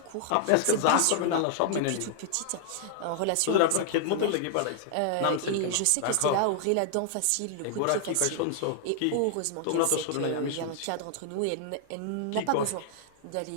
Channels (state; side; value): different; both; correlation 0.00